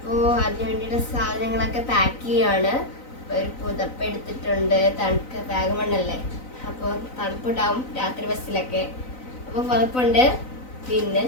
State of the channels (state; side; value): late; right; 3.9 ms